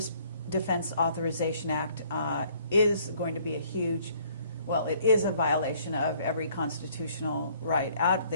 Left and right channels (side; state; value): both; inverted; correlation -0.61